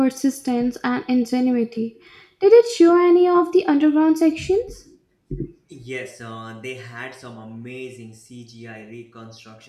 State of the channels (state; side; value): identical; both; correlation 1.00